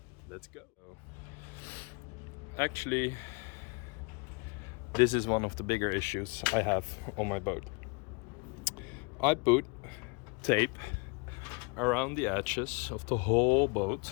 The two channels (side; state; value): right; quieter; 31.5 dB